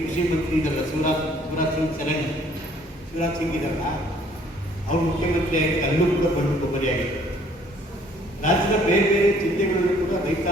ಕೃಷಿ ಮಂತ್ರಿ ಇದ್ದಾರಲ್ಲ, ಶಿವರಾಜ್ ಸಿಂಗ್ ಇದ್ದಾರಲ್ಲ, ಅವರು ಮುಖ್ಯಮಂತ್ರಿಯಾಗಿ ಅಲ್ಲೂ ಕೂಡ ಬಂದು ಕೊಬ್ಬರಿಯಾಗಿದೆ. ರಾಜ್ಯದ ಬೇರೆ ಬೇರೆ ಜಿಲ್ಲೆಗಳಲ್ಲೂ ಕೂಡ ರೈತ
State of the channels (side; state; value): both; normal; correlation 0.60